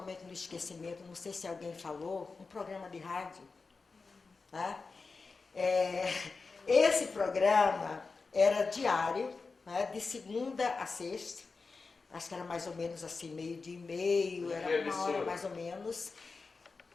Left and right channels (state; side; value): quieter; right; 4.3 dB